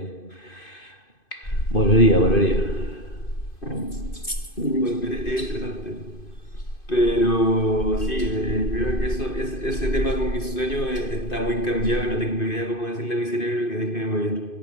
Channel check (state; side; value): late; right; 2.5 ms